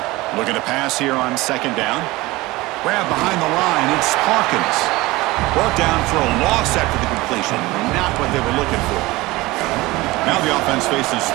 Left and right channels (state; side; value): quieter; left; 20.4 dB